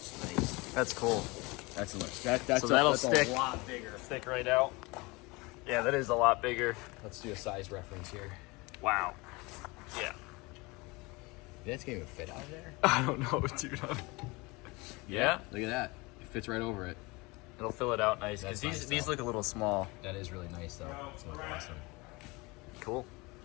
nice. That's cool. That's that's So that'll that's stick. a lot bigger. Stick right out. Yeah, that is a lot bigger. Let's do a size reference here. Wow. Yeah. That's gonna even fit out there. I don't know, dude. Yeah. Look at that. It fits right over it. It'll fill it out nice because That's nice, these though. look a little small. That is really nice, though. It's looking awesome. Cool.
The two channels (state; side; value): quieter; right; 24.8 dB